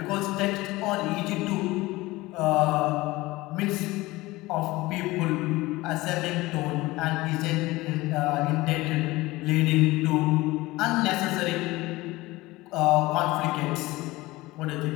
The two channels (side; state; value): right; quieter; 19.9 dB